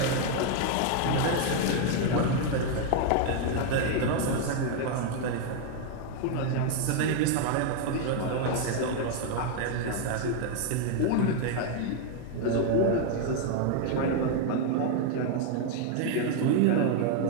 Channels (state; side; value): different; both; correlation 0.00